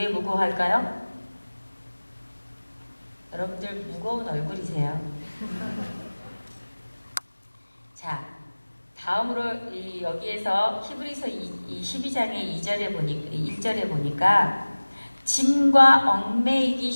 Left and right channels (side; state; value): both; inverted; correlation -1.00